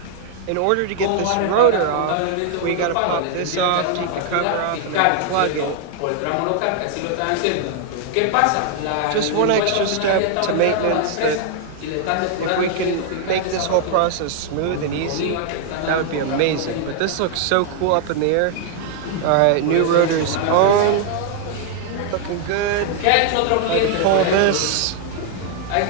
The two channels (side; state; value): both; different; correlation 0.00